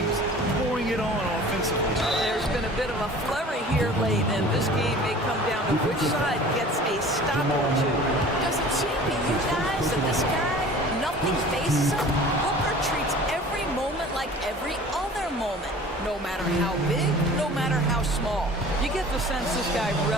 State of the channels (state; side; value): normal; both; correlation 0.44